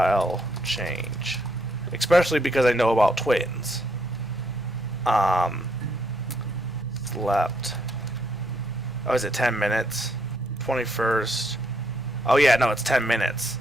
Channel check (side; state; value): both; normal; correlation 0.73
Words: change. Especially because I know about twins. Slept. Oh, is it 10 minutes? 21st. Oh yeah, no, it's 10 minutes.